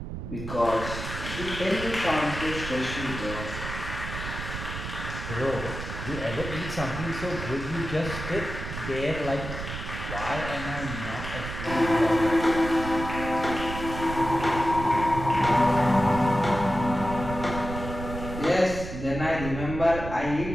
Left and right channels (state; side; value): noise; right; rumble, 7 dB below the sound